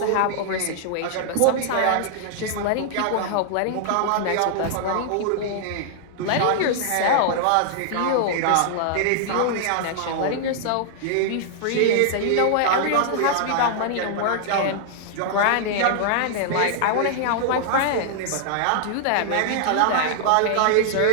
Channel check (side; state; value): both; different; correlation -0.01